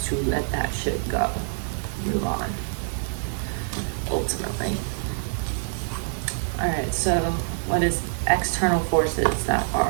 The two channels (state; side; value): silent; left; digital silence